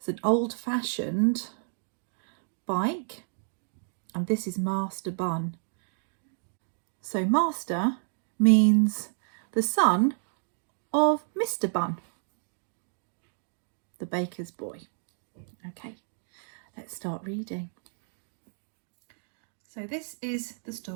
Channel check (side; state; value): left; silent; digital silence